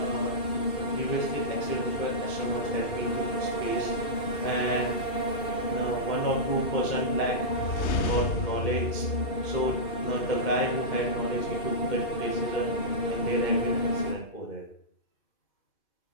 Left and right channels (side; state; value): right; late; 2.7 ms